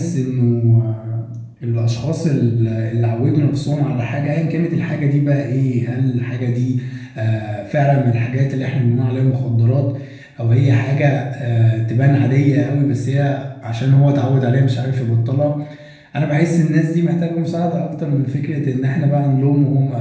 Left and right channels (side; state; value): both; identical; correlation 1.00